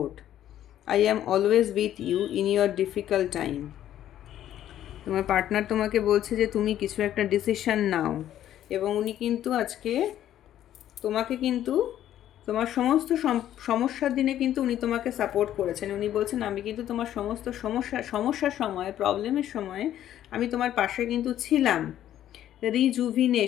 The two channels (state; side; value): quieter; right; 11.7 dB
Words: I am always with you in your difficult time. তোমার পার্টনার তোমাকে বলছে যে তুমি কিছু একটা ডিসিশন নাও, এবং উনি কিন্তু আজকে তোমাকে কিন্তু তোমার সমস্ত সমস্যার দিনে কিন্তু উনি তোমাকে সাপোর্ট করেছেন। উনি বলছেন আমি কিন্তু তোমার সমস্ত সমস্যার সময়, প্রবলেমের সময় আমি তোমার পাশে কিন্তু ছিলাম।